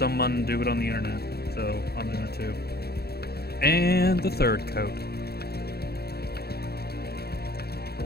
do it on the internet, so I'm doing it too. And the third coat.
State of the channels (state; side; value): late; right; 0.46 ms